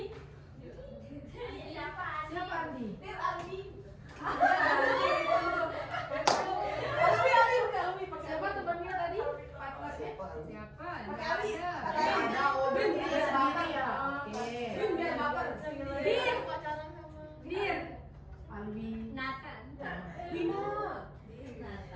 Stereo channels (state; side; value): identical; both; correlation 1.00